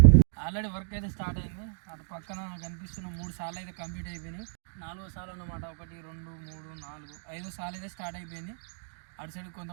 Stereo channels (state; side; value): silent; left; digital silence